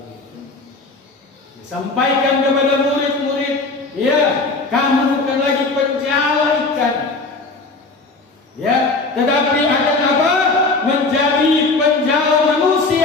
Sampaikan kepada murid-murid, ya, kamu bukan lagi penjala ikan, ya, tetapi akan apa? Menjadi penjala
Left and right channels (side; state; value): right; quieter; 3.6 dB